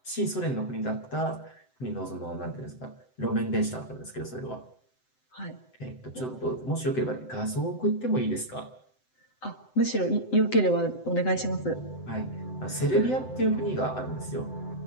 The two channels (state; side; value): late; right; 7.8 ms